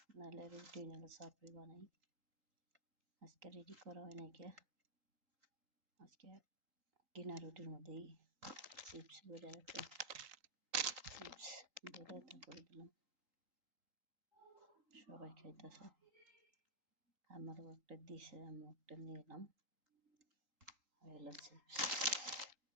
নাহলে রুটি নাহলে চাপড়ি বানাই। আজকে রেডি করা হয় নাই কে, আজকে কিনা রুটির মধ্যেই চিপস বেড়ে আছে, চিপস বেড়ে তারপরে দিলাম, সবাই খাইতেছে। আমারও একটা দিছে, আমি একটা নিয়ে এলাম। হলো চিপস।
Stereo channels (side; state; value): left; late; 3.8 ms